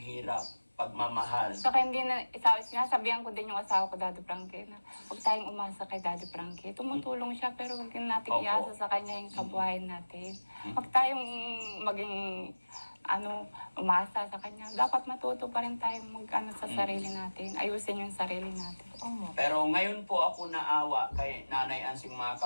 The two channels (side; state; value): both; inverted; correlation -1.00